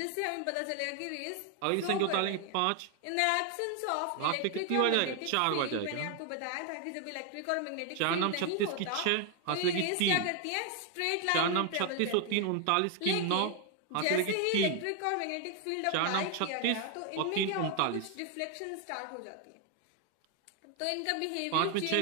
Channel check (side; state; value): both; different; correlation 0.01